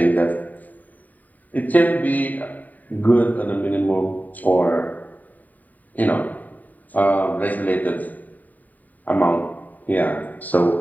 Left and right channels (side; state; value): right; late; 0.080 ms